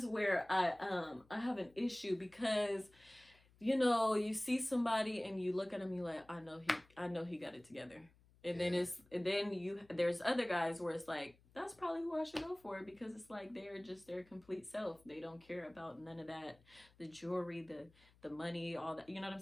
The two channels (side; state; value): left; noise; hum, 29 dB below the sound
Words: where I have an issue because, you see somebody and you look at him, you're like, I know he got it together. And then there's other guys where it's like, that's probably who I should go for, because it's like they're just their complete self. They don't care about none of that, the jewelry, the money, all that. You know what I'm